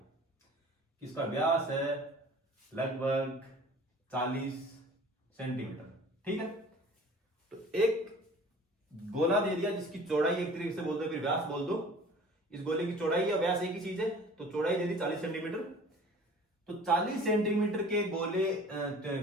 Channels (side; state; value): both; normal; correlation 0.46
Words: इसका व्यास है लगभग 40 सेंटीमीटर। ठीक है, तो एक गोला दे दिया जिसकी चौड़ाई एक तरीके से बोल दो, फिर व्यास बोल दो, इस गोले की चौड़ाई या व्यास एक ही चीज है, तो चौड़ाई दे दी 40 सेंटीमीटर। तो 40 सेंटीमीटर के गोले